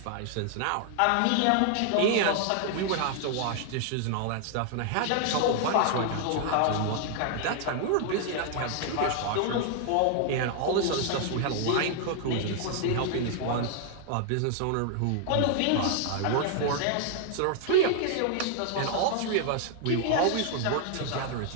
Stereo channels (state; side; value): different; both; correlation 0.00